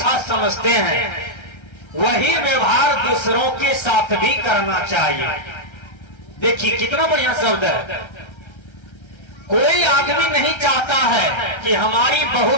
समझते हैं, वही व्यवहार दूसरों के साथ भी करना चाहिए। देखिए कितना बढ़िया शब्द है। कोई आदमी नहीं चाहता है कि हमारी बहू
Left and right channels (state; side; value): late; right; 1.3 ms